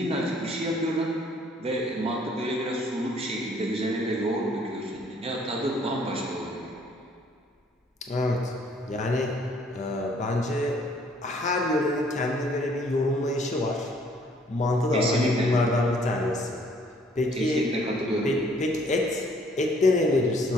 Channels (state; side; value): normal; both; correlation 0.61